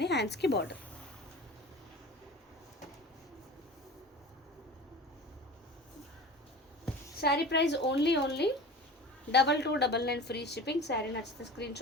హ్యాండ్స్కి border. Sari price only 2299 free shipping. Sari నచ్చితే స్క్రీన్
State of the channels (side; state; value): both; normal; correlation 0.36